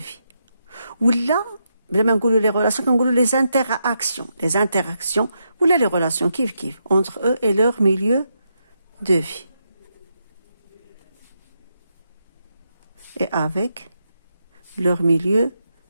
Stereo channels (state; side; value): inverted; both; correlation -0.82